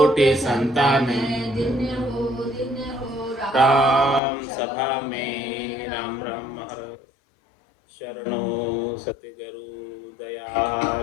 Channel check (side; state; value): right; drops out; at 4.2 s